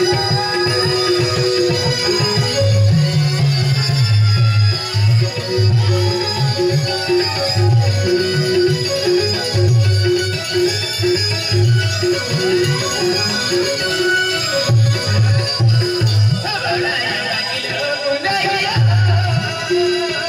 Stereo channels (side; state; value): both; identical; correlation 1.00